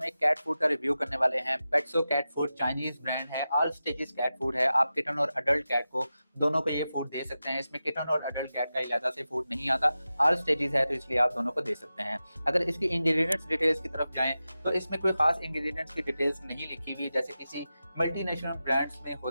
एक कैट फूड का रिव्यू करने वाले हैं। पेट्सो कैट फूड चाइनीज ब्रांड है, ऑल स्टेजेस कैट फूड है। आप किटन और अडल्ट कैट को दोनों को ये फूड दे सकते हैं। इसमें किटन और अडल्ट कैट का इजाज़ा से फूड नहीं आता, ऑल स्टेजेस है तो इसलिए आप दोनों को दे सकते हैं। अगर इसकी इंग्रेडिएंट्स डिटेल्स की तरफ जाएं तो इसमें कोई खास इंग्रेडिएंट्स की डिटेल्स नहीं लिखी हुई, जैसे किसी मल्टीनेशनल ब्रांड्स में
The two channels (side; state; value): both; inverted; correlation -0.93